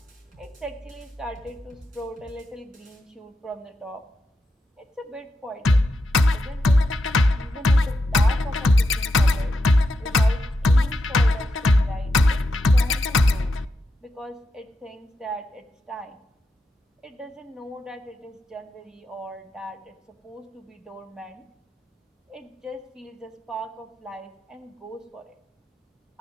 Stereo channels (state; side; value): normal; both; correlation 0.86